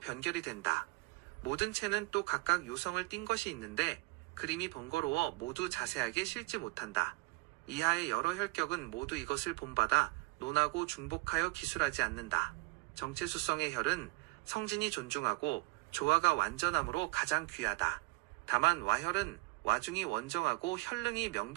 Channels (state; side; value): quieter; left; 25.9 dB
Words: 변결이 된다. 모든 채는 또 각각 요성을 띈 것이 있는데 그림이 번거로워 모두 자세하게 실지 못한다. 이하의 여러 혈격은 모두 이것을 본받아 논하고 중복하여 기술하지 않는다. 정체수성의 혈은 성진이 존중하고 조화가 완전함으로 가장 귀하다. 다만 와혈은 와중이 원정하고 혈릉이